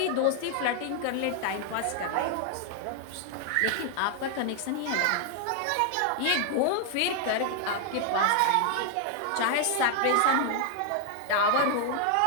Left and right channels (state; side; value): different; both; correlation 0.00